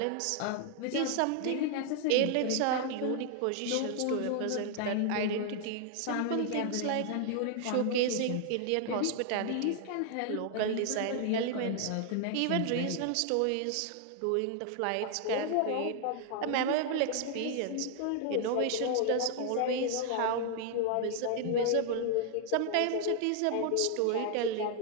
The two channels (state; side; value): different; both; correlation 0.00